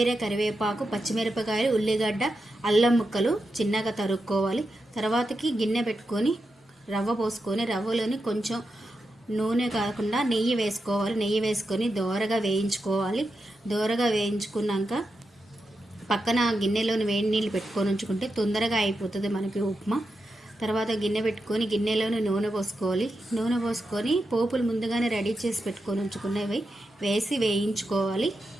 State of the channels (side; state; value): both; normal; correlation 0.88